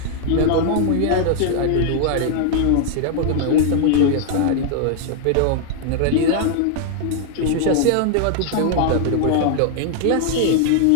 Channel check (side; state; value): both; different; correlation 0.00